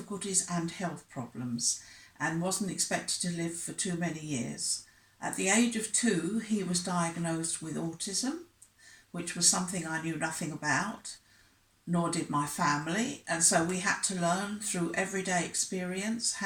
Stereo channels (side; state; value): both; identical; correlation 1.00